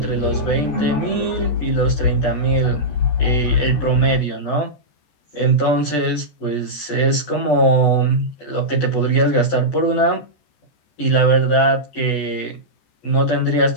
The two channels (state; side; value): late; right; 14 ms